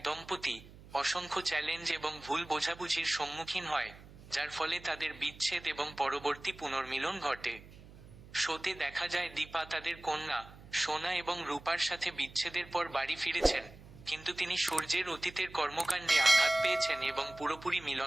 দম্পতি, অসংখ্য চ্যালেঞ্জ এবং ভুল বোঝাবুঝির সম্মুখীন হয়, যার ফলে তাদের বিচ্ছেদ এবং পরবর্তী পুনর্মিলন ঘটে। শোতে দেখা যায় দীপা তাদের কন্যা সোনা এবং রূপার সাথে বিচ্ছেদের পর বাড়ি ফিরেছেন, কিন্তু তিনি সূর্যের অতীতের কর্মকাণ্ডে আঘাত পেয়েছেন এবং পুরোপুরি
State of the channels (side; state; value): right; noise; hum, 19 dB below the sound